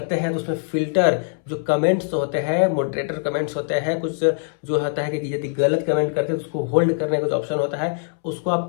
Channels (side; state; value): right; silent; 64 dB below the other